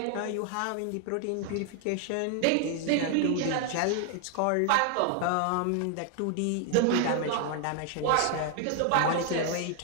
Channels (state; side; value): different; both; correlation 0.00